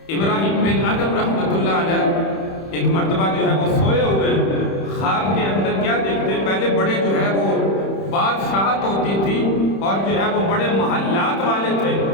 ابراہیم بن ادم رحمۃ اللہ علیہ ایک مرتبہ جو ہے وہ سوئے ہوئے خواب کے اندر کیا دیکھتے ہیں، پہلے بڑے جو ہے وہ بادشاہت ہوتی تھی اور جو ہے وہ بڑے محلات والے تھے،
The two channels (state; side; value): late; right; 31 ms